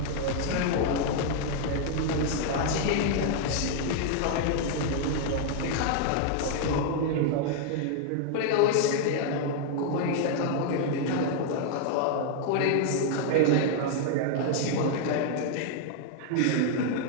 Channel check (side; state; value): both; different; correlation 0.00